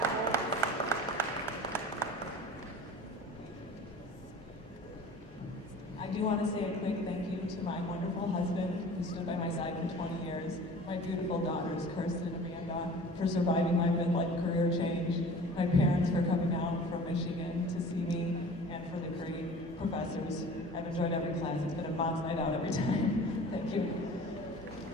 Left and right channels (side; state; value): both; normal; correlation 0.43